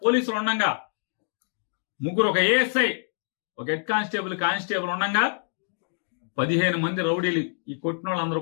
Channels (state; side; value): silent; right; digital silence